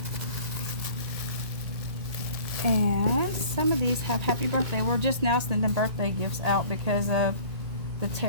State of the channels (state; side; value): late; left; 1.9 ms